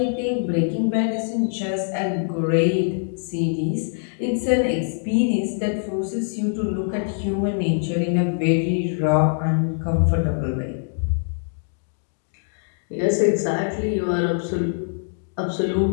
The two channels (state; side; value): silent; right; digital silence